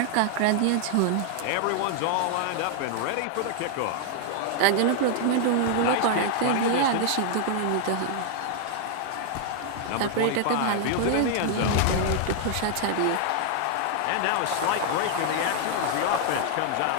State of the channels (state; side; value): different; both; correlation 0.00